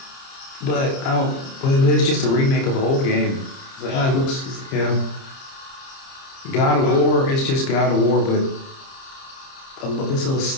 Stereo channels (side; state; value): right; late; 30 ms